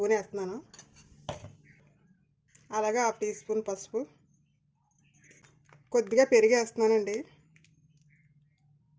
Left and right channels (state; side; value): identical; both; correlation 1.00